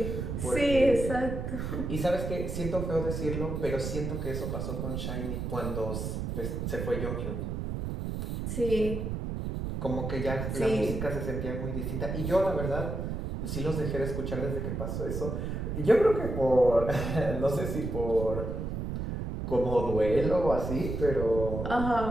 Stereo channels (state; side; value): noise; right; rumble, 3 dB below the sound